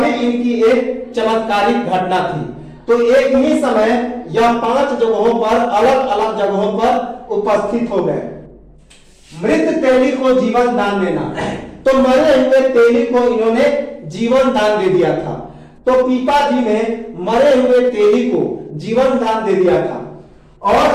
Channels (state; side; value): identical; both; correlation 1.00